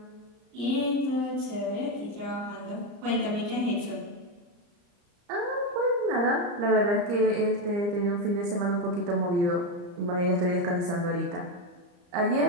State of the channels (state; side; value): late; left; 34 ms